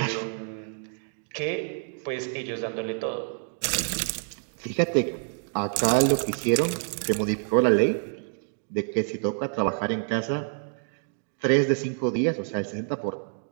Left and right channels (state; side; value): silent; left; 60 dB below the other